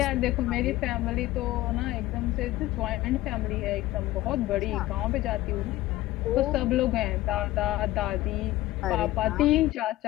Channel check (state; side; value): quieter; right; 16.7 dB